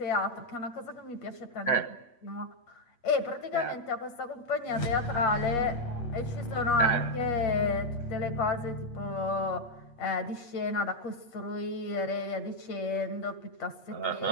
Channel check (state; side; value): late; right; 8.4 ms